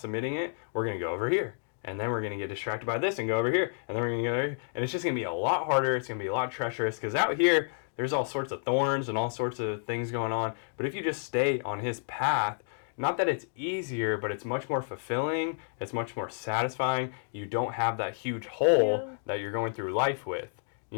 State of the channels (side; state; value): right; silent; digital silence